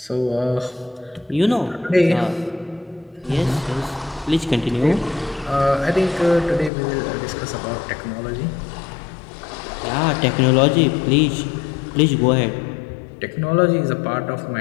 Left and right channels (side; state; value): right; drops out; at 6.7 s